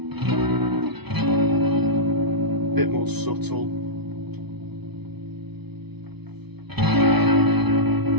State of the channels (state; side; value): late; left; 0.99 ms